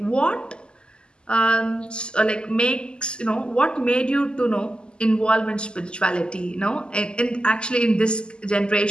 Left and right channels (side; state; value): right; late; 0.049 ms